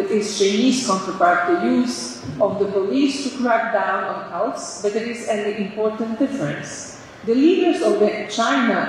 its Chinese counterpart the use of the police to crack down on cults, but there is an important difference. The leaders of the China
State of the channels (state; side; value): identical; both; correlation 1.00